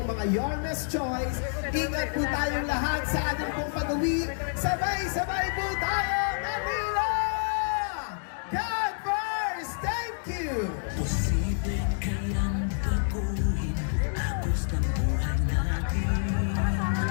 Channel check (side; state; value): right; silent; digital silence